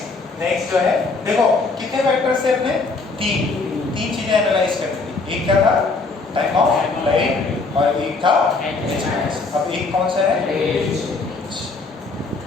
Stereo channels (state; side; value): quieter; right; 3.8 dB